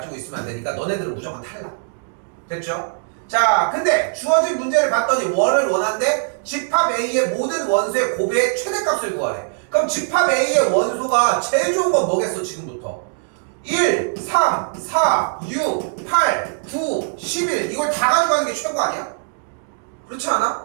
있으면 안 되니까 너네들은 무조건 탈락. 됐죠? 자 근데 주어진 문제를 봤더니 원을 원한데 집합 A의 모든 원소의 곱의 최대값을 구하래. 그럼 집합 A의 원소가 제일 좋은 건 뭐겠어 지금부터? 1, 3, 4, 6, 8, 9, 11 이걸 다 가져가는 게 최고 아니야? 그렇지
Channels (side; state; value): left; silent; digital silence